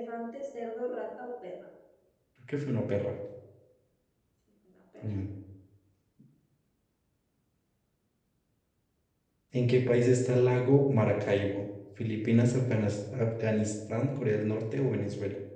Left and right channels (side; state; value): both; identical; correlation 1.00